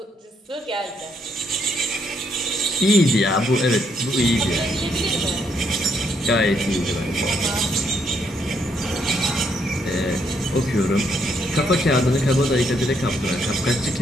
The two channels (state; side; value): normal; both; correlation 0.74